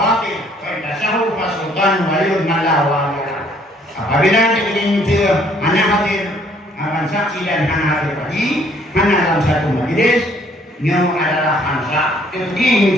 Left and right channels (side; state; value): both; normal; correlation 0.62